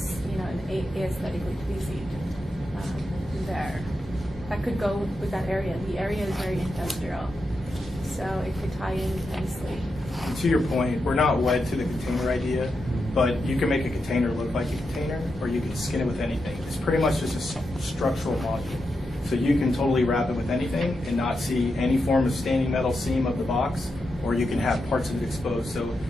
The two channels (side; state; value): both; normal; correlation 0.87